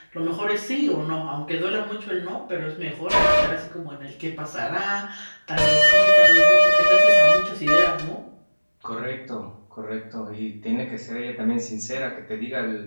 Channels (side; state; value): both; inverted; correlation -1.00